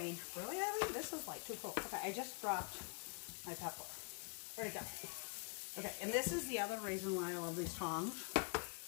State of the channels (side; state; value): right; quieter; 36.7 dB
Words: really, Abby? This is like too cool. Okay, I just dropped my pepper. Where'd it go? Okay, and this is the other reason why I love these tongs.